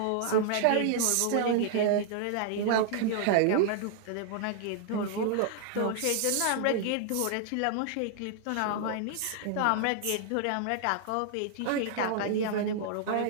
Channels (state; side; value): different; both; correlation 0.00